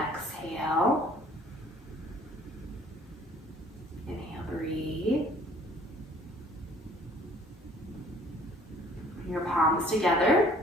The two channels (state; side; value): normal; both; correlation 0.56